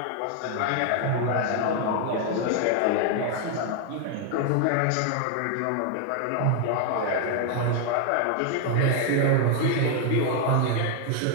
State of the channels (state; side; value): different; both; correlation 0.00